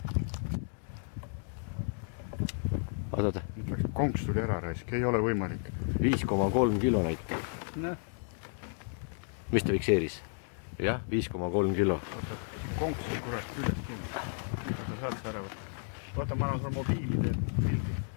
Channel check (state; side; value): silent; right; 56 dB below the other